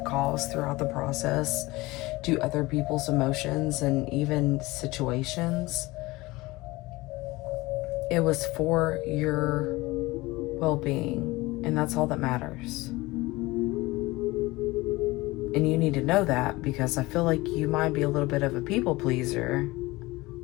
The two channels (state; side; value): quieter; right; 20.9 dB